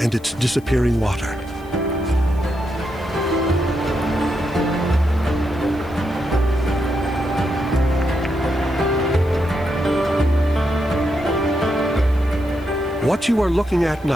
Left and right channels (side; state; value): left; noise; hiss, 28 dB below the sound